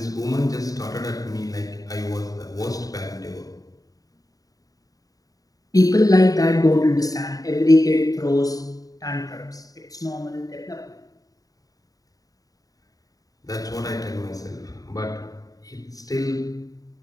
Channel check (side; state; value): right; late; 0.18 ms